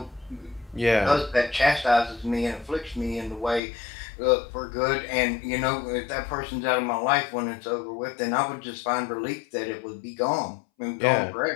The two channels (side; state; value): right; drops out; at 3.6 s